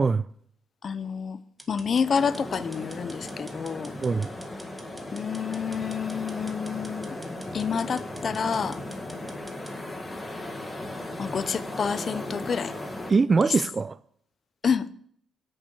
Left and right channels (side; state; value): both; normal; correlation 0.84